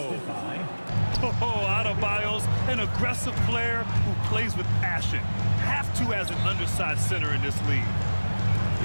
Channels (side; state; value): both; inverted; correlation -1.00